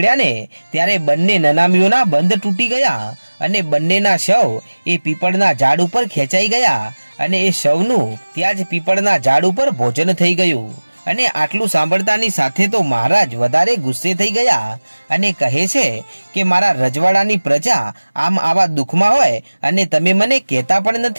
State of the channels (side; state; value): both; inverted; correlation -1.00